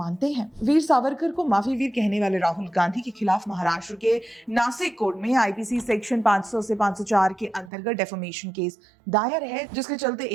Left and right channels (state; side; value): drops out; left; at 7.7 s